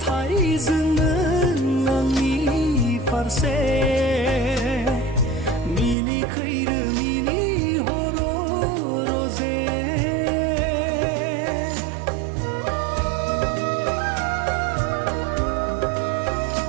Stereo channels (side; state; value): left; drops out; at 6.0 s